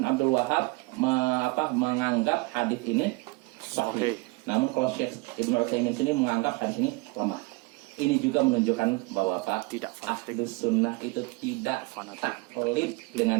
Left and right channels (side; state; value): left; quieter; 25.2 dB